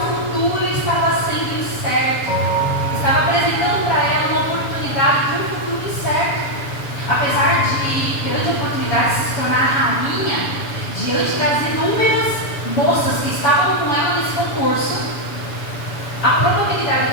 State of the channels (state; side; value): late; right; 7.1 ms